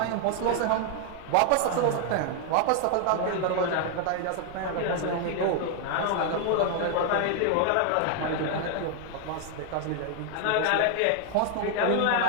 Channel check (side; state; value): both; different; correlation 0.00